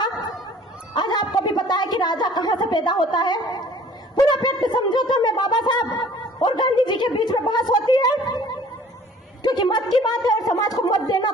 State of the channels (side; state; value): both; normal; correlation 0.51